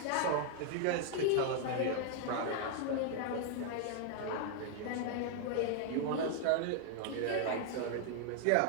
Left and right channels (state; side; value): different; both; correlation 0.00